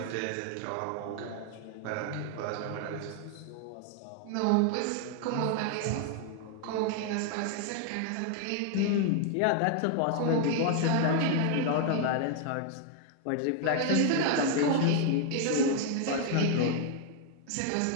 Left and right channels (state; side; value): different; both; correlation 0.00